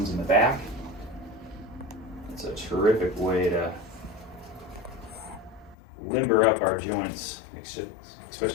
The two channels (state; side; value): drops out; right; at 5.8 s